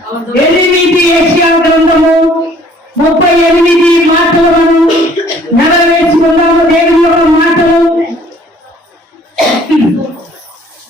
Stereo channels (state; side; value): normal; both; correlation 0.57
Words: యెషయా గ్రంథము 38 మాటలు మనం నెరవేర్చుకున్నాము. దేవుని యొక్క మాటలు